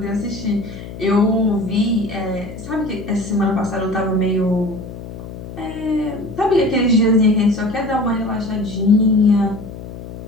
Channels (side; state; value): left; noise; hum, 12 dB below the sound